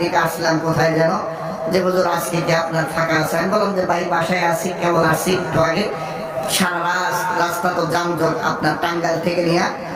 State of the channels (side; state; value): both; identical; correlation 1.00